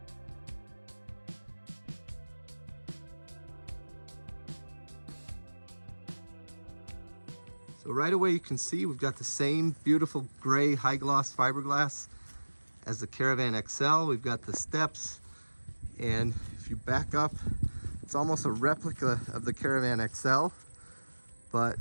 So right away you can see we've got the same beautiful gray high gloss fiberglass as the Caravan XL. We've got the steps, and if you back up, it's almost a replica of the Caravan XL. But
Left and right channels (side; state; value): both; inverted; correlation -1.00